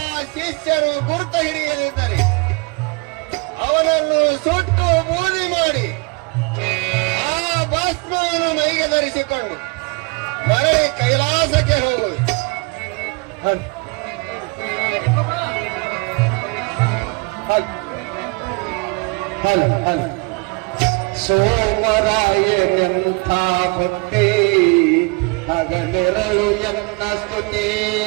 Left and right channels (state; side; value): quieter; left; 29.6 dB